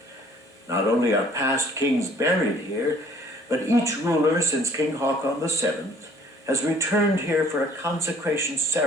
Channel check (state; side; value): normal; both; correlation 0.57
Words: Not only are past kings buried here, but each ruler since King Haakon VII has returned here for a consecration